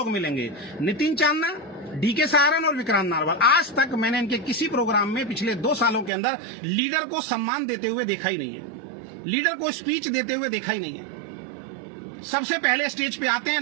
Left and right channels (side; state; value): left; drops out; at 6.1 s